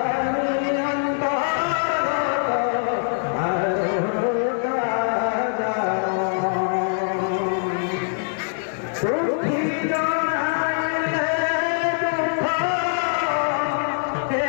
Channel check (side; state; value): right; silent; 62 dB below the other